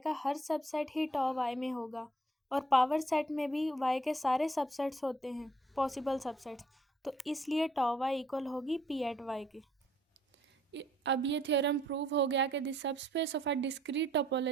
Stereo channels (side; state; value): both; normal; correlation 0.64